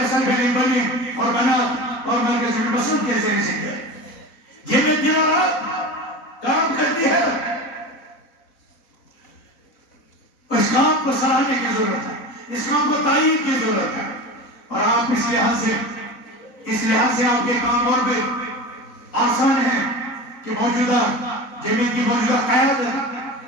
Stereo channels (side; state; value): right; late; 4.0 ms